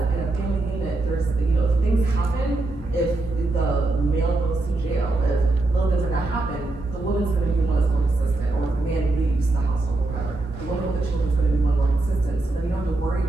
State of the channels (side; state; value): left; quieter; 3.0 dB